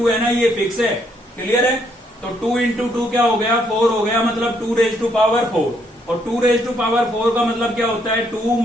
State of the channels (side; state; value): both; normal; correlation 0.71